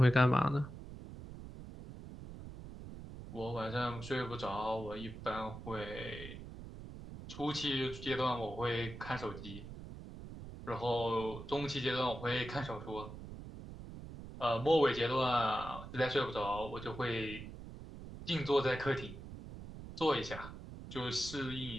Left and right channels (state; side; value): noise; right; rumble, 12 dB below the sound